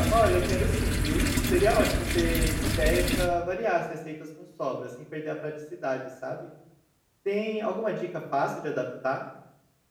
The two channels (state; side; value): identical; both; correlation 1.00